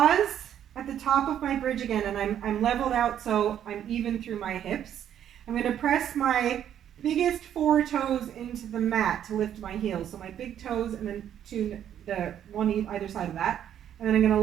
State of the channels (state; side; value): quieter; left; 10.1 dB